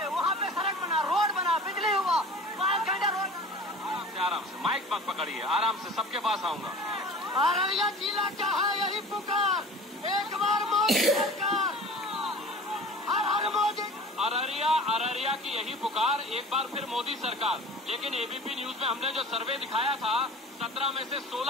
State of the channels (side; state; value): both; normal; correlation 0.40